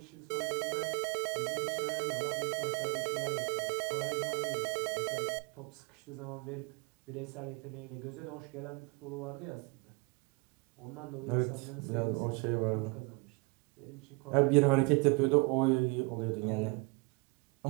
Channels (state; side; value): quieter; left; 29.3 dB